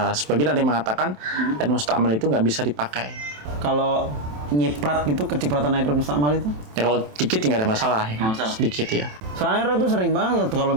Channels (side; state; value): left; late; 27 ms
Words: sebagian ada yang mengatakan air mustakmal itu nggak bisa dipakai. Kalau nyiprat gitu, kecipratan air mustakmal itu? Ya kalau dikit nggak ada masalah. Ya. Sedikit ya. Soalnya Roy tuh sering banget kalau